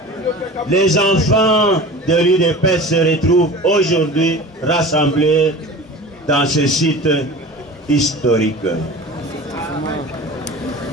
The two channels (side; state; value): both; normal; correlation 0.37